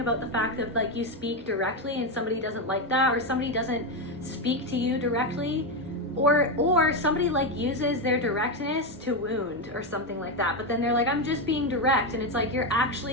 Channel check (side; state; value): both; normal; correlation 0.09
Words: about the fact that like you speak directly and somebody doesn't like that, or somebody doesn't speak to you directly, or somebody like uses their directness to wound or something like that. But then they're like, I'm just being direct, and it's like you're